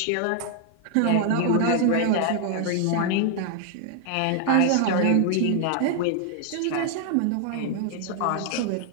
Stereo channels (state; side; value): different; both; correlation 0.00